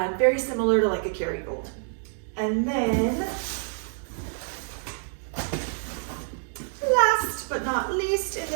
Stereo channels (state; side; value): silent; left; 60 dB below the other